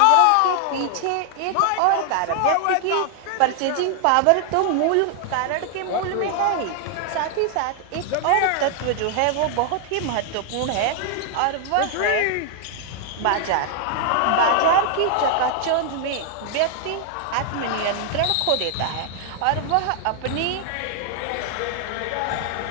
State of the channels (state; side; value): different; both; correlation 0.00